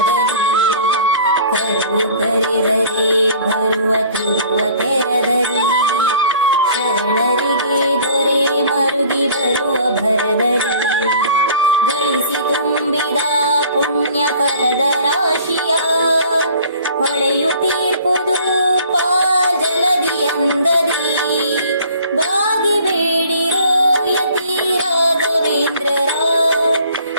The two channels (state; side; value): inverted; both; correlation -0.50